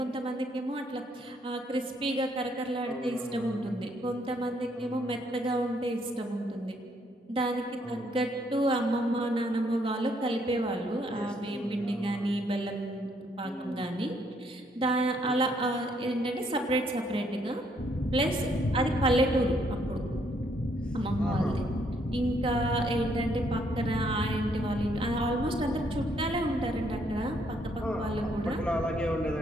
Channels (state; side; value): normal; both; correlation 0.70